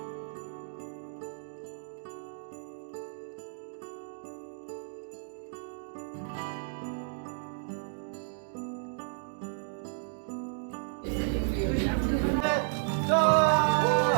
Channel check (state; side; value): silent; left; digital silence